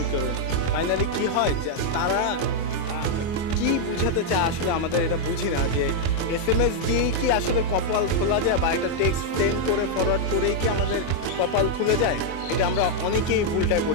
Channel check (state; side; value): late; right; 24 ms